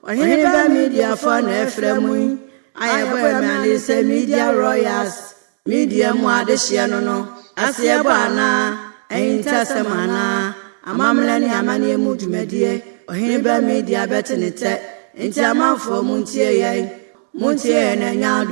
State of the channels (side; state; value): left; silent; digital silence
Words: Oheneba Media for na efremu ayebo me say media royals media mu adehye no asebo ana entasema amamla ni amane mu dwumadie Oheneba Media betenete enti amanfo mu ntie ye na